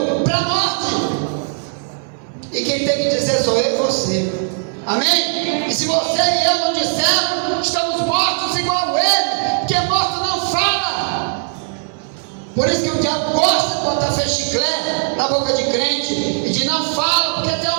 para a morte. E quem tem que dizer sou eu e você. Amém? E se você e eu não dissermos, estamos mortos igual ele, porque morto não fala. Por isso que o diabo gosta de botar fechiclé na boca de crente e de não fala porque tu é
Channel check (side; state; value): left; silent; digital silence